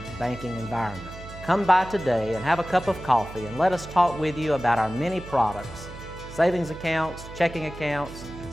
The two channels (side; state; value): right; noise; hum, 14 dB below the sound